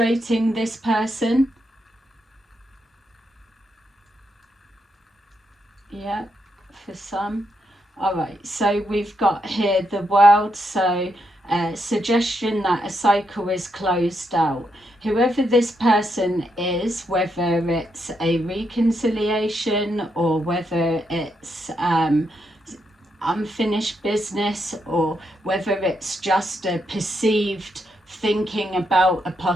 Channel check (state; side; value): normal; both; correlation 0.80